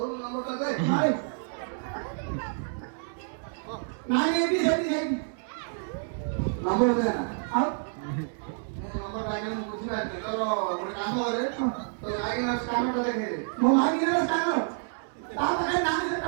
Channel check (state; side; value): silent; left; 59 dB below the other